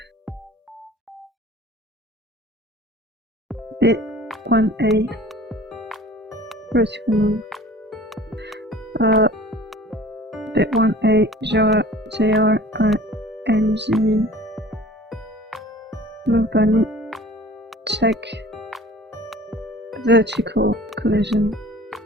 Bit 1A. Vertical move. Bit 1A, JR, NG. Move bunny. Check. Vertical collision.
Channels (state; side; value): normal; both; correlation 0.45